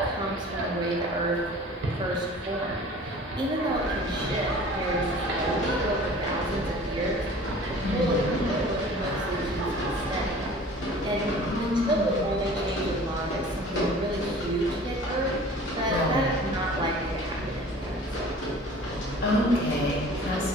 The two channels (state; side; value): normal; both; correlation 0.45